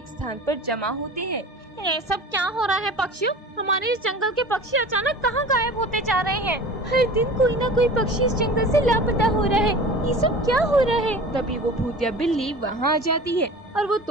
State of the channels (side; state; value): both; normal; correlation 0.39